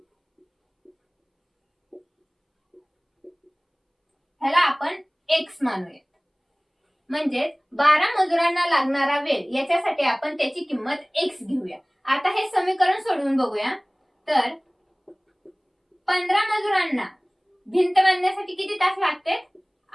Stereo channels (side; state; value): both; identical; correlation 1.00